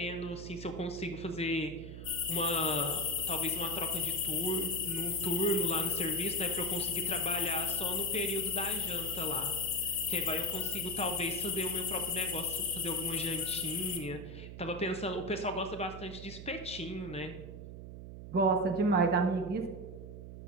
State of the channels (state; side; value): noise; right; hum, 11 dB below the sound